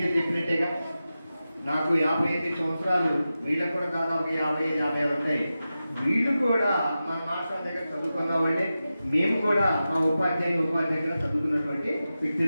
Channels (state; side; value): inverted; both; correlation -0.93